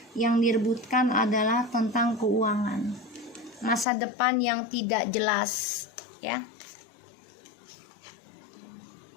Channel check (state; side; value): drops out; right; at 3.9 s